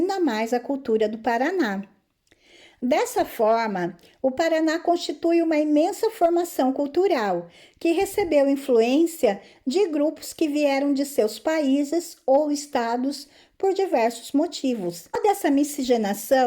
mais a cultura do Paraná. Dessa forma, o Paraná constitui uma imensa formação cultural, que recebeu influência de grupos que vieram de seus países ou estados por diversos motivos. Toda essa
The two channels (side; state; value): both; identical; correlation 1.00